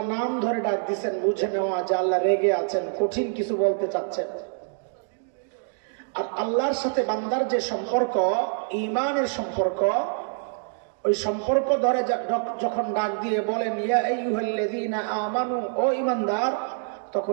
নাম ধরে ডাক দিচ্ছেন, বুঝে নেওয়া যে আল্লাহ রেগে আছেন, কঠিন কিছু বলতে চাচ্ছেন। আর আল্লাহর সাথে বান্দার যে সম্পর্ক, ঈমানের সম্পর্ক, ওই সম্পর্ক ধরে যখন ডাক দিয়ে বলেন ইয়া আইয়ুহাল্লাযীনা আমানু, ও ঈমানদার,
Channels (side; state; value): left; silent; digital silence